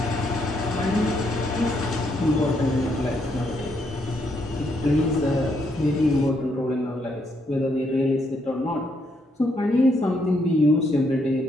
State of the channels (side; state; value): both; normal; correlation 0.75